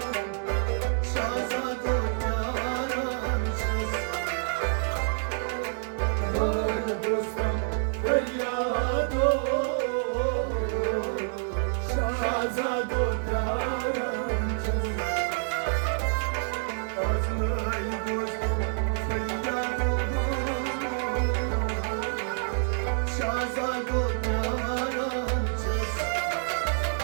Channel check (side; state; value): left; silent; digital silence